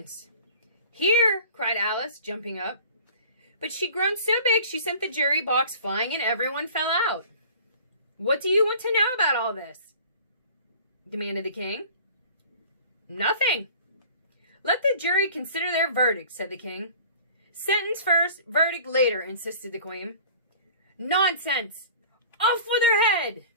"Here!" cried Alice, jumping up. But she'd grown so big she sent the jury box flying and everyone fell out. "What do you want to know about all this?" demanded the King. "Nothing." "Let the jury consider their verdict," said the King. "Sentence first, verdict later," insisted the Queen. "Nonsense! Off with her head!"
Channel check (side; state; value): both; inverted; correlation -0.45